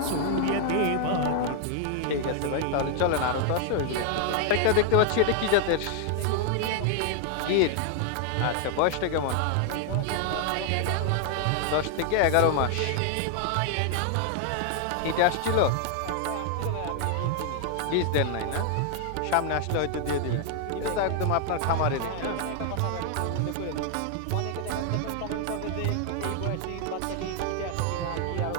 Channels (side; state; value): both; different; correlation 0.00